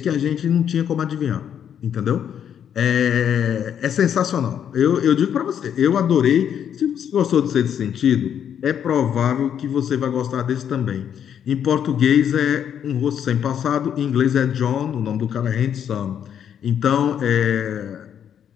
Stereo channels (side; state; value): right; quieter; 8.9 dB